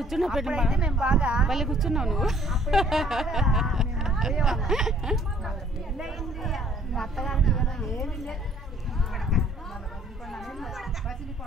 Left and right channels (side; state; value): both; normal; correlation 0.58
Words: పెట్టు మేము బాగా పల్లె కూర్చున్నావు నువ్వు. పెళ్ళయింది మా అత్తగారికి ఏమి లేదు.